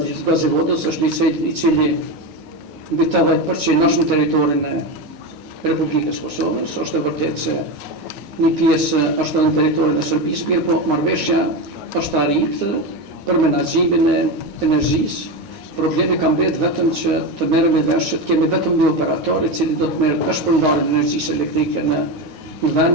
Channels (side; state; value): left; late; 9.5 ms